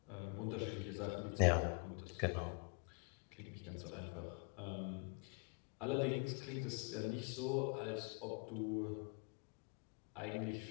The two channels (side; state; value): right; quieter; 34.4 dB